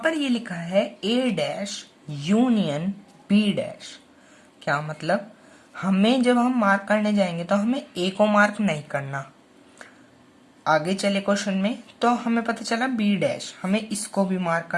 ये लिखा है ए डैश यूनियन बी डैश। क्या मतलब, हमें जब हम मार्क करने जाएंगे तो हमें ए को मार्क नहीं करना। आगे चले क्वेश्चन में तो हमें पता चला बी डैश, हमें इसको भी मार्क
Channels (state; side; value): identical; both; correlation 1.00